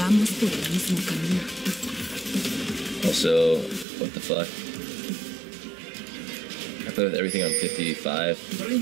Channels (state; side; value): drops out; left; at 3.9 s